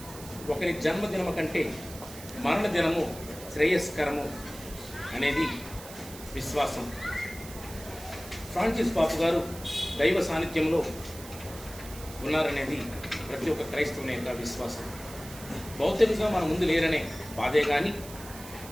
ఒకరి జన్మదినము కంటే మరణ దినము శ్రేయస్కరము అనేది విశ్వాసం. ఫ్రాన్సిస్ పాపు గారు దైవ సాన్నిధ్యంలో ఉన్నారనేది ప్రతి ఒక్క క్రైస్తవుని యొక్క విశ్వాసం. భౌతికంగా మన ముందు లేరనే బాధే కానీ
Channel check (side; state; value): right; noise; hiss, 15 dB below the sound